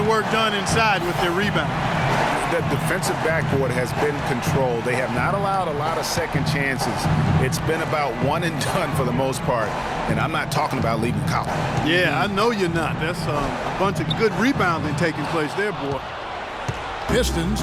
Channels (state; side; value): identical; both; correlation 1.00